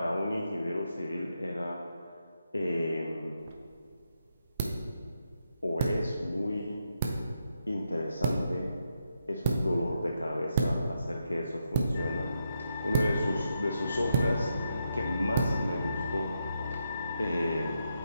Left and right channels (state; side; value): inverted; both; correlation -0.82